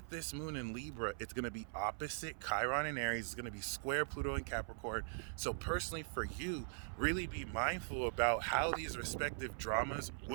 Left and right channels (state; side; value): silent; left; 50 dB below the other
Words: this moon in Libra, it's going to be opposite Chiron in Aries. It's going to be square Pluto in Capricorn. So personally for you, really be mindful about how these respective dramas